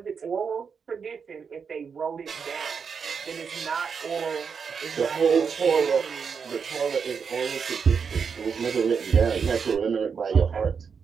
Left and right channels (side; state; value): left; quieter; 6.1 dB